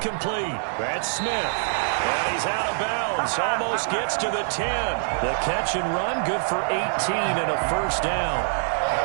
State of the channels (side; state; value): left; silent; digital silence